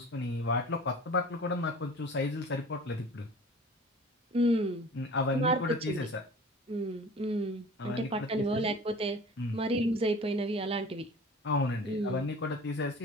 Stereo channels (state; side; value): normal; both; correlation 0.42